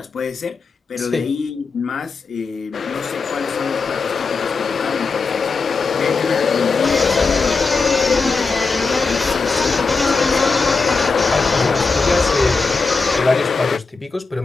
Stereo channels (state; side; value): quieter; right; 4.4 dB